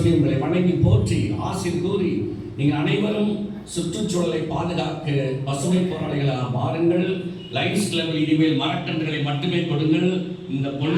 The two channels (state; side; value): identical; both; correlation 1.00